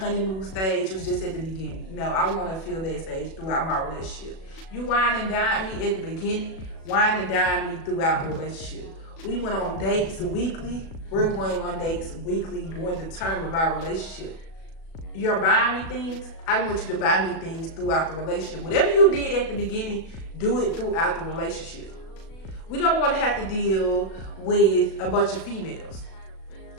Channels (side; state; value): right; late; 37 ms